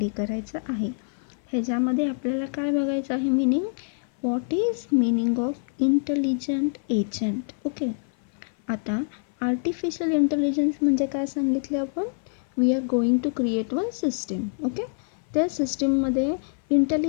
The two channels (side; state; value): right; silent; 56 dB below the other